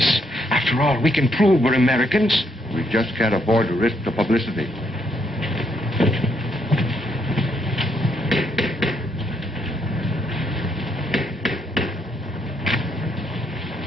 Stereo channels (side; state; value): both; normal; correlation 0.74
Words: After all, we can prove we're Americans. We just can't afford to risk the publicity.